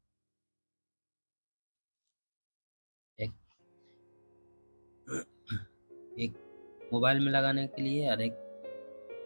एक मोबाइल में लगाने के लिए और एक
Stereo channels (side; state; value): both; inverted; correlation -1.00